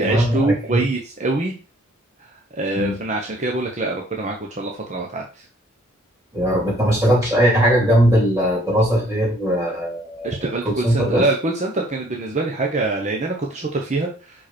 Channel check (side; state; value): both; normal; correlation 0.60